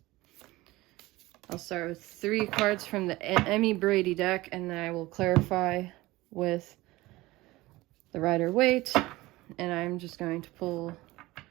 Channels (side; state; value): left; quieter; 19.4 dB